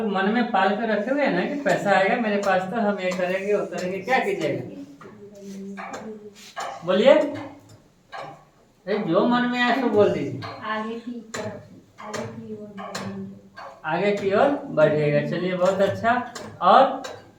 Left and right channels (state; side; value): identical; both; correlation 1.00